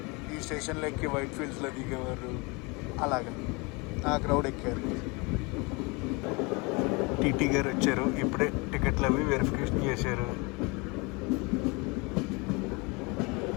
ఈ స్టేషన్లో ఎక్కి వైట్ ఫీల్డ్స్లో దిగేవారు. అలాగా ఆ క్రౌడ్ ఎక్కారు. టీటీ గారు వచ్చారు. ఇప్పుడే టికెట్లు అవి వెరిఫికేషన్ చేశారు.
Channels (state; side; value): quieter; right; 28.0 dB